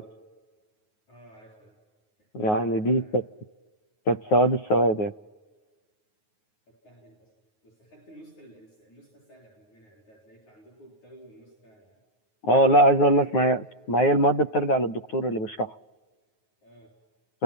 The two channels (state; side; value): late; right; 9.4 ms